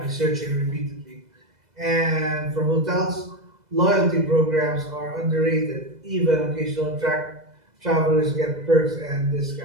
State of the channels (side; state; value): left; late; 2.0 ms